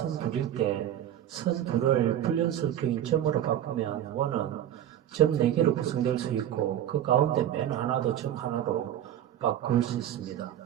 둘일 때 선 둘을 불연속적인 점으로 바꾸면 원은 점 4개로 구성될 수 있고, 그 가운데 맨 하나도 점 하나로 바꿀 수 있습니다.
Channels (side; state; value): left; quieter; 11.1 dB